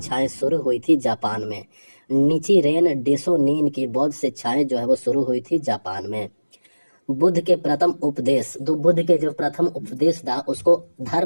शुरू हुई थी जापान में। निचिरेन डेसोनिन की बौद्ध शिक्षाएं जो है वो शुरू हुई थी जापान में। बुद्ध के प्रथम उपदेश जो प्रथम उपदेश था उसको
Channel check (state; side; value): inverted; both; correlation -1.00